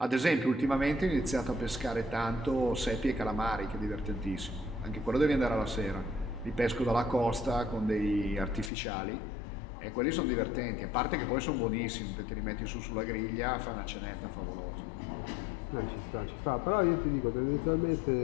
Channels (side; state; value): right; drops out; at 8.7 s